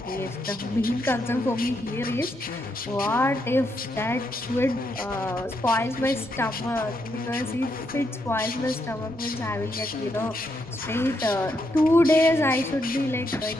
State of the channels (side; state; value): both; normal; correlation 0.79